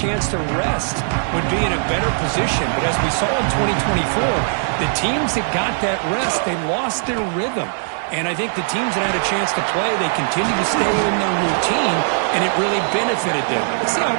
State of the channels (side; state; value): left; silent; digital silence